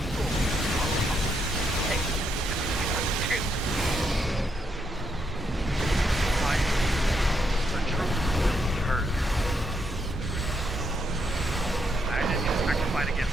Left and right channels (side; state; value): both; normal; correlation 0.78